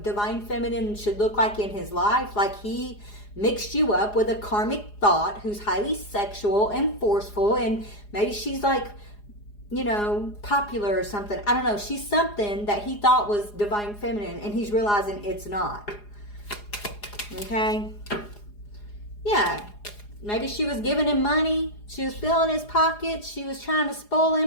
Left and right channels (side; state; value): right; late; 4.8 ms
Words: divine feminine should look like in his life. Like he mixed you up with a karmic thought who's highly sexual and forceful, and maybe she's like, you know, popular or something. I don't know. She's something that he thought was divine feminine, and he's realizing it's not. Okay? Yeah. Maybe she was giving him money. She was filling his pockets. She was trying to spoil